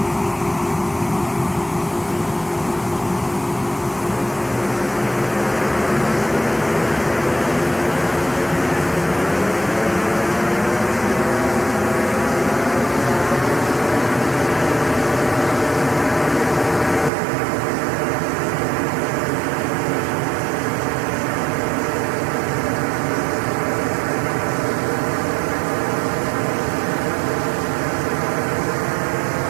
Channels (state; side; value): drops out; left; at 17.1 s